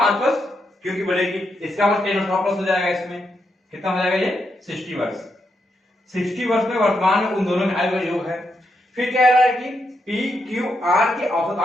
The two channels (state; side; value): normal; both; correlation 0.82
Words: वर्ष क्यू की बढ़ेगी, इसका मतलब 10 वर्ष प्लस हो जाएगा। इसमें कितना हो जाएगा ये 60 वर्ष। 60 वर्ष में वर्तमान में उन दोनों में आयु का योग है। फिर कह रहा है कि पी क्यू आर की औसत